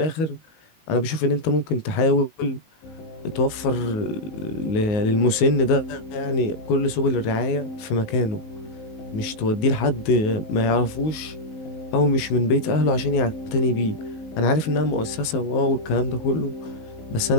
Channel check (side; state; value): right; late; 19 ms